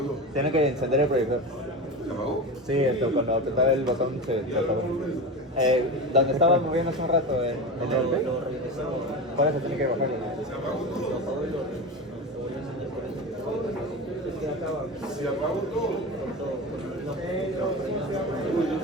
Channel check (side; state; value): both; normal; correlation 0.25